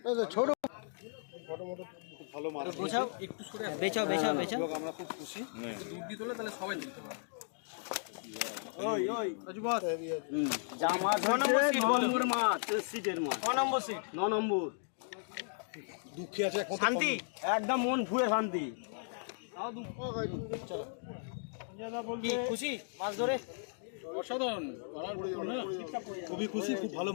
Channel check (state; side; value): silent; right; digital silence